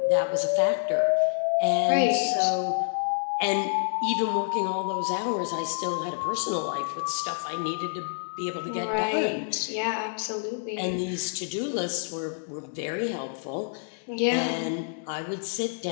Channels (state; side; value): silent; right; digital silence